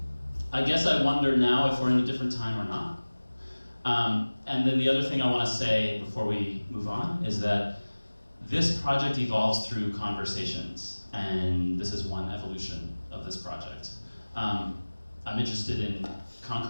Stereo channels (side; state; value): both; inverted; correlation -1.00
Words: guess I wonder now if we're in a different time or not. And then the other thing I want to say before we move on is that this project evolves through conversations, and this is one evolution of this project. I'm interested in